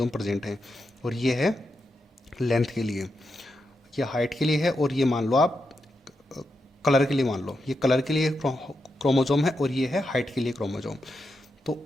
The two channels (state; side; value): normal; both; correlation 0.86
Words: प्रेजेंट हैं, और ये है लेंथ के लिए। ये हाइट के लिए है, और ये मान लो आप कलर के लिए मान लो, ये कलर के लिए क्रोमोसोम है और ये है हाइट के लिए क्रोमोसोम। तो